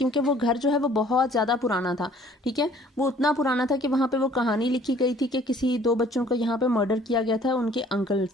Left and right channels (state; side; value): normal; both; correlation 0.55